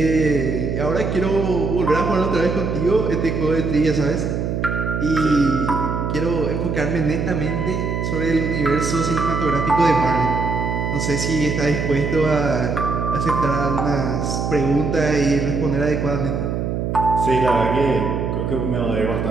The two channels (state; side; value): noise; right; hum, 1 dB below the sound